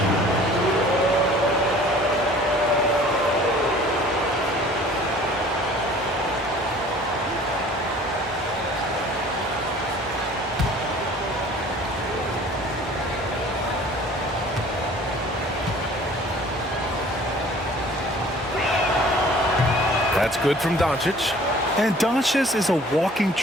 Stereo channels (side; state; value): both; normal; correlation 0.50